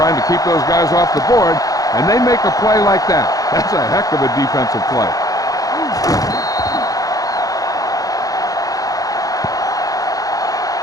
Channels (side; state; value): right; late; 0.17 ms